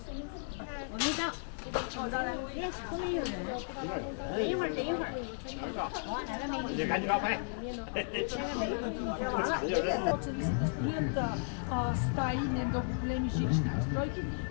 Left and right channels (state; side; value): silent; right; digital silence